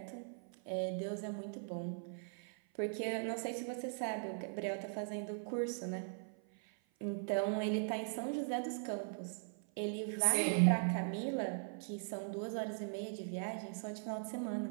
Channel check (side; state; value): left; silent; 51 dB below the other